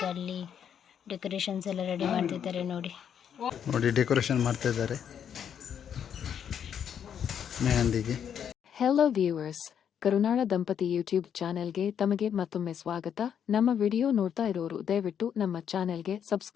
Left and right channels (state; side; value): quieter; right; 8.5 dB